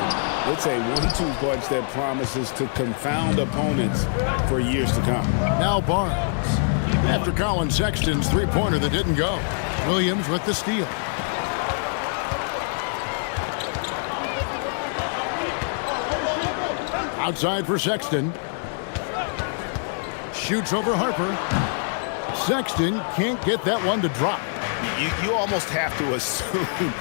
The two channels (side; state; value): right; silent; digital silence